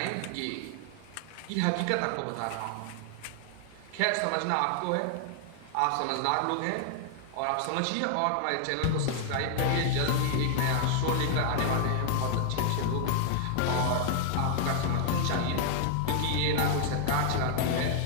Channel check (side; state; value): both; different; correlation 0.00